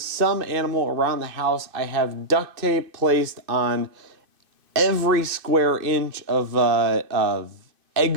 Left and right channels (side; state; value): left; late; 2.5 ms